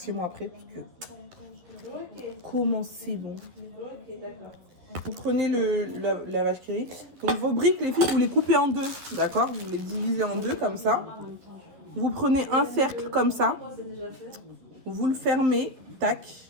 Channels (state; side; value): late; left; 11 ms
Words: après, parce que comment c'est bon. Vous prenez la vache qui rit. Donc, vos briques, les filles, vous les coupez en 2. D'accord? Vous les divisez en 2 comme ça. Vous prenez un cercle comme ça. Vous le fermez. Tac.